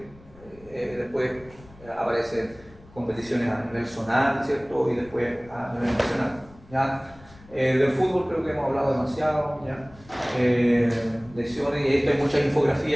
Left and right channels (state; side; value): noise; left; rumble, 23 dB below the sound